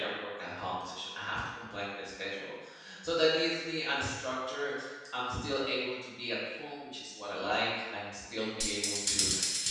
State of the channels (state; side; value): identical; both; correlation 1.00